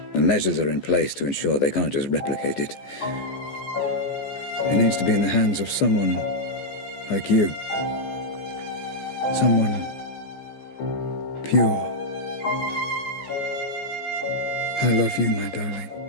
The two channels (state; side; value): late; right; 14 ms